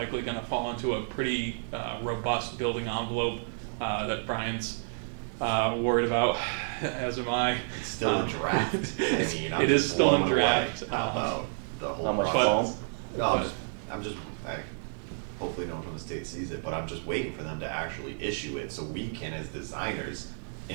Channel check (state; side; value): silent; left; digital silence